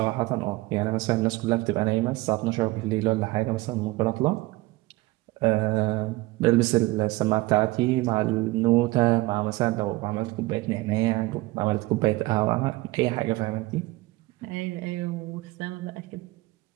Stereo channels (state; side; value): quieter; left; 20.5 dB